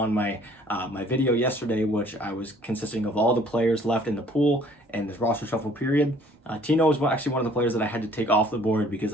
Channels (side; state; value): both; normal; correlation 0.57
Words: my my video yesterday, which I was consisting of all the players left in the pool and this roster shuffle period. Tino was actually one of the players that I had to take off the board because